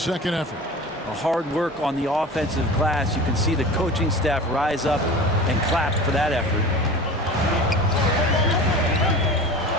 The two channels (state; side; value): normal; both; correlation 0.36